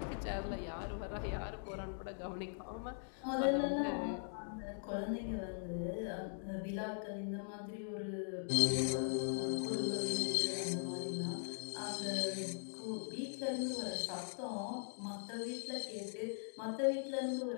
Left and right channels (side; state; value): right; silent; digital silence